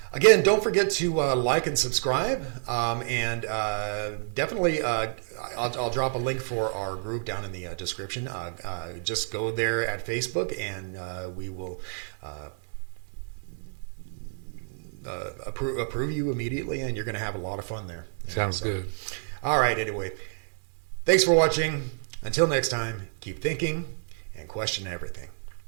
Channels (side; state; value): left; silent; digital silence